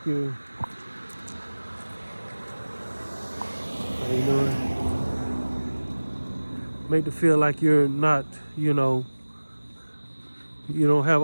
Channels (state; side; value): inverted; both; correlation -1.00